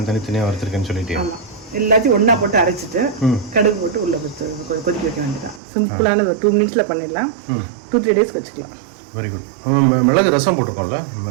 தனியா வறுத்துருக்கேன்னு சொல்லிட்டு. ஆமா, எல்லாத்தையும் ஒன்னா போட்டு அரைச்சிட்டு கடுகு போட்டு உள்ள கொதிக்க வைக்க வேண்டியதான். சிம்பிளான ஒரு 2 மினிட்ஸ்ல பண்ணிடலாம். 2-3 டேஸ் வச்சுக்கலாம். Very good. மிளகு ரசம் போட்டிருக்கோம்ல?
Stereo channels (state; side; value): drops out; left; at 5.6 s